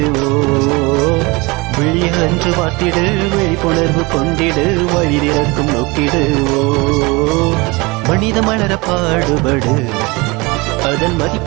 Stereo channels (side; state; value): left; quieter; 25.1 dB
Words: விழிய அன்று பார்த்திடு, விழிப்புணர்வு கொண்டிடு, வழி திறக்கும் நோக்கிடு. மனித மலர பாடுபடு, அதன்